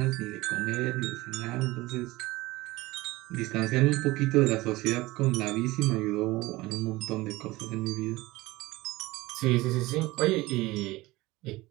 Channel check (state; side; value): quieter; left; 20.0 dB